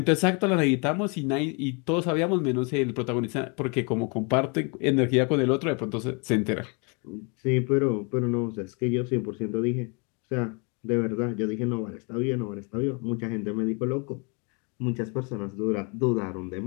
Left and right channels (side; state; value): right; quieter; 33.6 dB